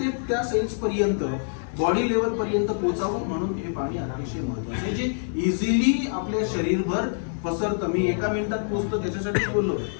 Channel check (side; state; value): right; silent; digital silence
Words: त्या सेल्स पर्यंत, बॉडी लेवल पर्यंत पोचावं म्हणून हे पाणी अतिशय महत्वाचं आहे, जे इझिली आपल्या शरीरभर पसरतं. मी एका मिनिटात पोहोचतो त्याच्यासाठी बोललो,